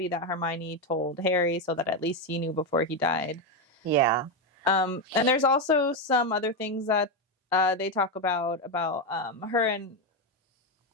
that Hermione told Harry so that at least he knew before he died. Yeah. And there's also some other things that they talk about her and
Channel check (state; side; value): normal; both; correlation 0.08